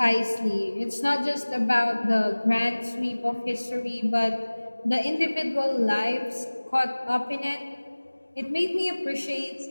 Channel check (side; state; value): both; inverted; correlation -1.00